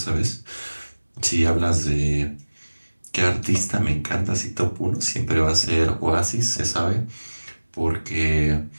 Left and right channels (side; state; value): both; inverted; correlation -1.00